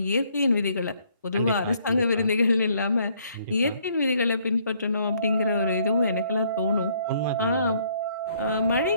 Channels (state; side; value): inverted; both; correlation -0.66